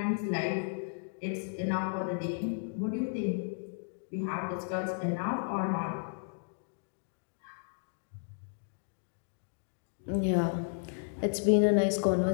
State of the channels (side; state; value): right; silent; digital silence